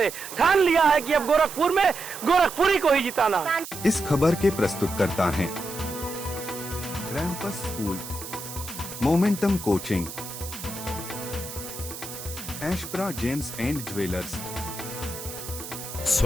ठान लिया है कि अब गोरखपुर में गोरखपुरी को ही जिताना है। इस खबर के प्रस्तुतकर्ता हैं रैंपस school, momentum coaching, Ashpra gems and jewellers.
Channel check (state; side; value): noise; right; hiss, 11 dB below the sound